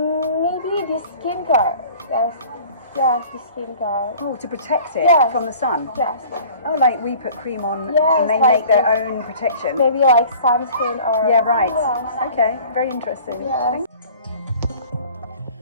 the skincare. Yes, the skincare. Oh, to protect it Yes. from the sun? Yes. Oh, like we put cream on Yes, and they like make their own protection? Maybe like sunscreen or... Yeah, right. Yes. Okay, very interesting. Yes. Thank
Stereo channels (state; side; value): inverted; both; correlation -0.47